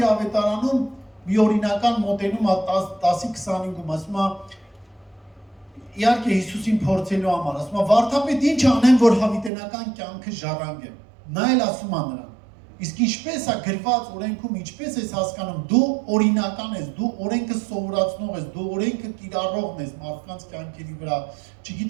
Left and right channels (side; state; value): left; drops out; at 9.5 s